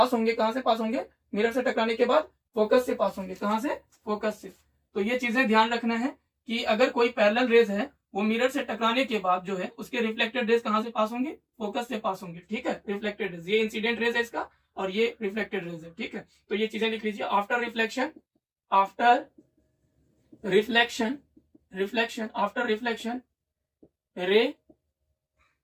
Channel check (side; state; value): both; identical; correlation 1.00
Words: होंगे कहां से पास होंगे, मिरर से टकराने के बाद फोकस से पास होंगे। कहां से, फोकस से। तो ये चीजें ध्यान रखना है कि अगर कोई पैरेलल रेज है वो मिरर से टकराने के बाद जो है उसके रिफ्लेक्टेड रेज कहां से पास होंगे, फोकस से पास होंगे, ठीक है। रिफ्लेक्टेड रेज, ये इंसिडेंट रेज है इसका और ये रिफ्लेक्टेड रेज है, ठीक है। तो ये चीजें लिख लीजिए। आफ्टर रिफ्लेक्शन, आफ्टर रिफ्लेक्शन रे